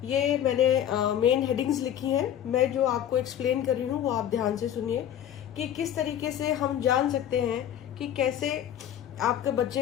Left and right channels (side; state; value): right; quieter; 10.4 dB